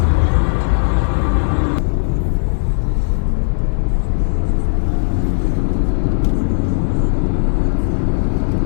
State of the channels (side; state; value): right; silent; digital silence